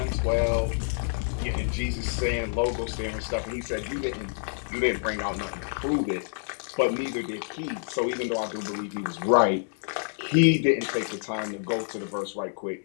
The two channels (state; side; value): silent; right; digital silence